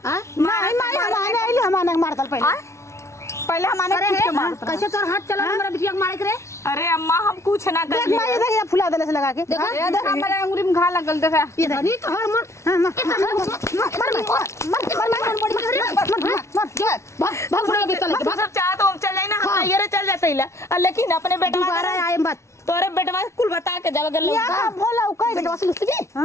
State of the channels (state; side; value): late; right; 0.13 ms